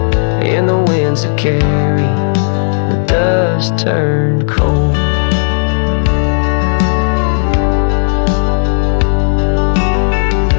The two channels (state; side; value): silent; right; digital silence